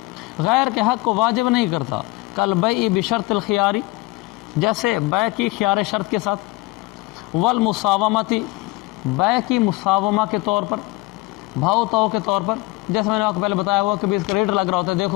غیر کے حق کو واجب نہیں کرتا، کالبیع بشرط الخیاری، جیسے بیع کی خیار شرط کے ساتھ، والمساومتی، بیع کی مساومہ کے طور پر، بھاؤ تو کے طور پر، جیسے میں نے آپ کو پہلے بتایا ہوا کہ بھی اس کا ریٹ لگ رہا ہوتا ہے،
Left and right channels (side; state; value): right; quieter; 21.9 dB